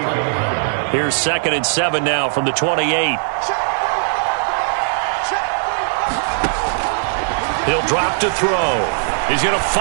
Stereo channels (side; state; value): left; silent; digital silence